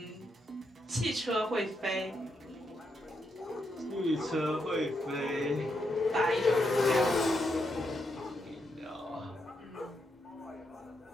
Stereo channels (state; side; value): normal; both; correlation 0.81